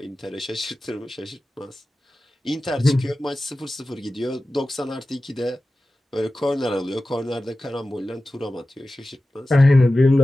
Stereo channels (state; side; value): normal; both; correlation 0.95